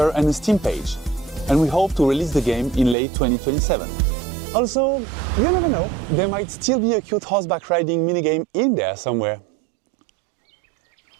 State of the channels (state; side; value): drops out; left; at 3.0 s